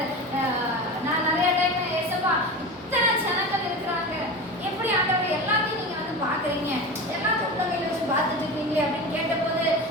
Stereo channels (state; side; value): normal; both; correlation 0.27